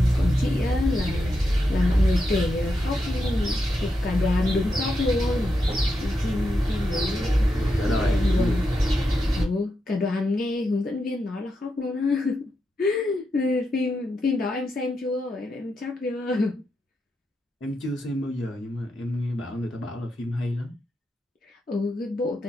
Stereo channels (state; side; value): normal; both; correlation 0.85